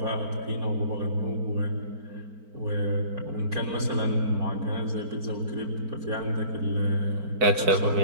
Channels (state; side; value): late; left; 4.4 ms